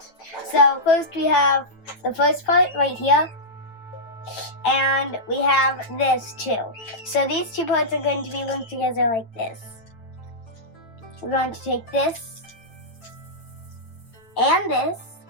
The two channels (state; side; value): late; right; 9.0 ms